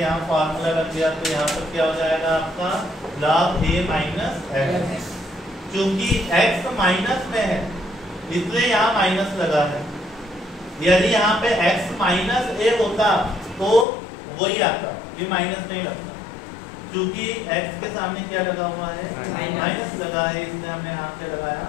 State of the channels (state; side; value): drops out; right; at 13.9 s